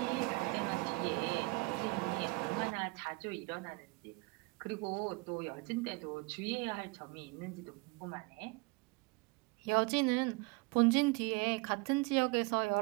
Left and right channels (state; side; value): quieter; left; 26.6 dB